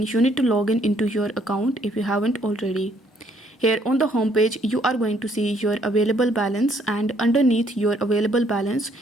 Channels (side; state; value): both; normal; correlation 0.67